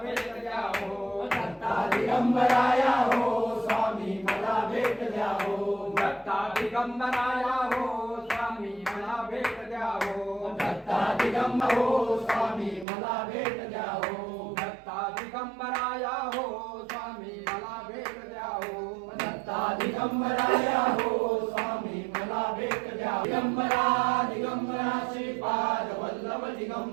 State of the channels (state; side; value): drops out; left; at 12.9 s